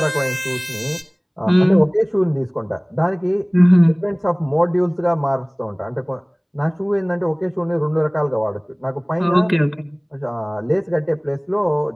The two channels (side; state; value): both; identical; correlation 1.00